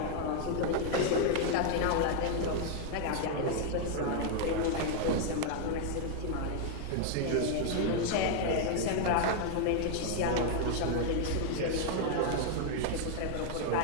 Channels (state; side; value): different; both; correlation 0.00